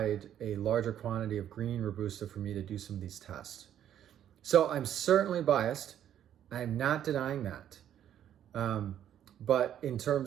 a larger quantity of green Robusta for me to do some of these tests. So I'm certainly biased. I'm not denying that. But in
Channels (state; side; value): quieter; left; 10.5 dB